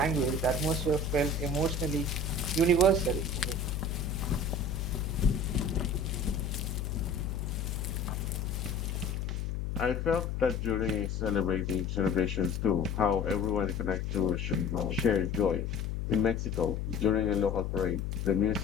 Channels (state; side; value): noise; left; hum, 2 dB below the sound